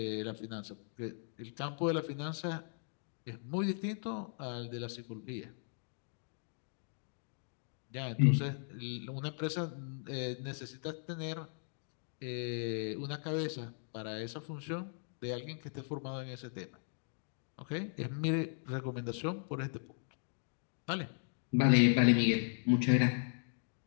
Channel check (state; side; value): silent; right; digital silence